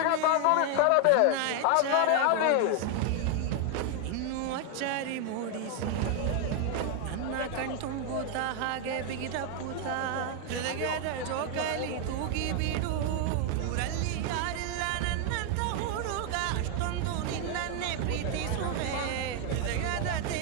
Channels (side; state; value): both; different; correlation 0.00